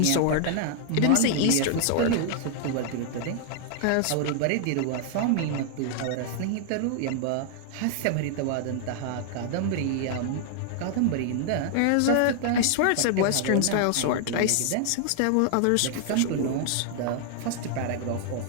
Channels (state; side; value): different; both; correlation 0.00